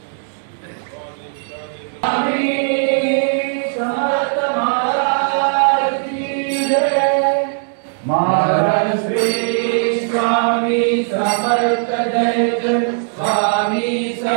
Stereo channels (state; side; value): silent; left; 65 dB below the other